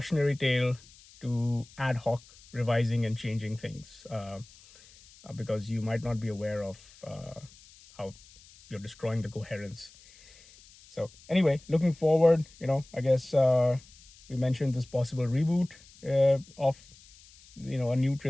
tale to ad hoc revising and changing things, because you might not be aware of how you're destroying the coherence. So anyway, looking forward, I guess we mentioned this possible reboot of a new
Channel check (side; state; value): left; noise; hiss, 24 dB below the sound